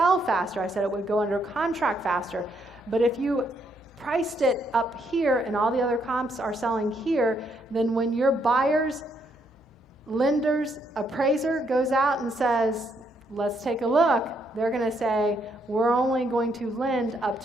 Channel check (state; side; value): normal; both; correlation 0.74